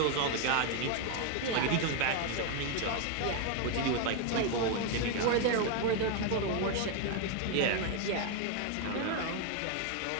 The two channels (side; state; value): both; different; correlation 0.01